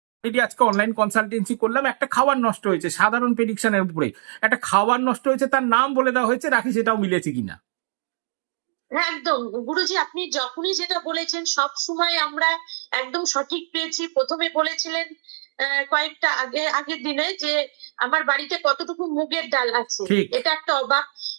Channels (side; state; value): left; silent; digital silence